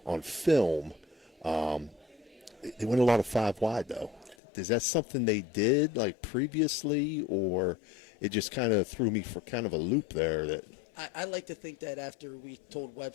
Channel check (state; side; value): drops out; right; at 4.4 s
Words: on film. They went a lot of 5 wide, though. Is that something they did like previously, or it just kind of threw me for kind of a loop there? That I like to think that after we told